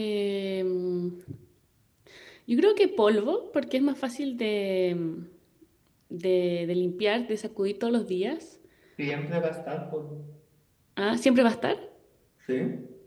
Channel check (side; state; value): both; identical; correlation 1.00